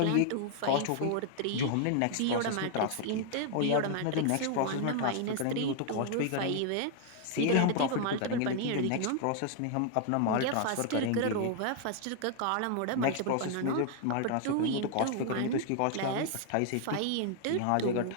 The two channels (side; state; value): both; different; correlation 0.00